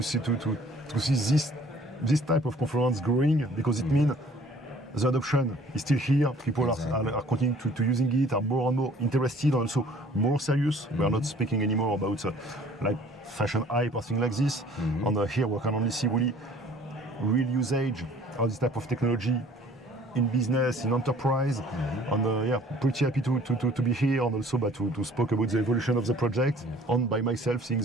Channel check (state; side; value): normal; both; correlation 0.53